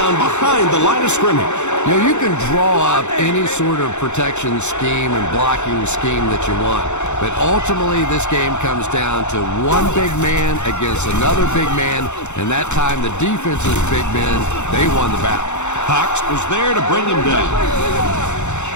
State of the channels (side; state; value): right; late; 0.83 ms